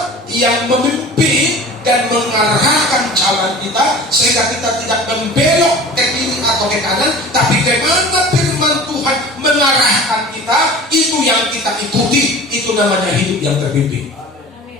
yang memimpin dan mengarahkan jalan kita, sehingga kita tidak membelok ke kiri atau ke kanan, tapi kemana firman Tuhan mengarahkan kita, itu yang kita ikuti. Itu namanya hidup yang terpimpin.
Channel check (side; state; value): both; normal; correlation 0.40